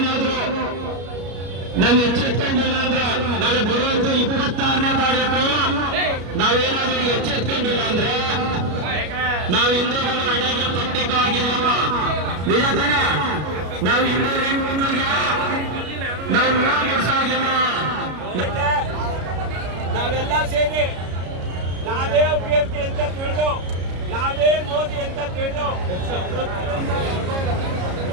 ನಾವು ಎಚ್ಚೆತ್ಕೊಂಡಿಲ್ಲ ಅಂದ್ರೆ ನಾಳೆ ಬರುವಂತ 26ನೇ ತಾರೀಕು ನಾವೇನಾದ್ರೂ ಎಚ್ಚೆತ್ಕೊಂಡಿಲ್ಲ ಅಂದ್ರೆ ನಾವು ಹಿಂದೂಗಳು ಹಣೆಗೆ ಪಟ್ಟಿಗೂ ಆಗಿಲ್ಲ. ನಿಜ ತಾನೆ? ನಾವು ಹಿಂದೂ ಹೆಣ್ಮಕ್ಳಿಗೆ ನಾವು ಮುಗಿಸಾಗಿಲ್ಲ. ನಾವೆಲ್ಲ ಸೇರಿ ನಾವೇ ಅಭ್ಯರ್ಥಿ ಅಂತ ತಿಳಿದು, ನಾವೇ ಮೋದಿ ಅಂತ ತಿಳಿದು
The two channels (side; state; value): left; late; 33 ms